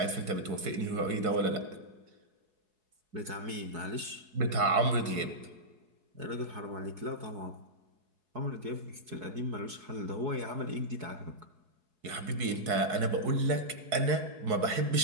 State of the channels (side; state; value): left; late; 4.7 ms